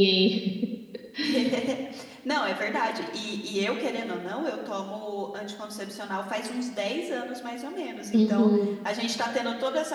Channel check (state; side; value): identical; both; correlation 1.00